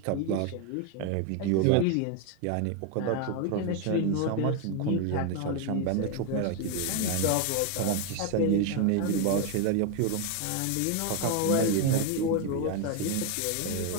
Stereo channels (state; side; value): different; both; correlation 0.02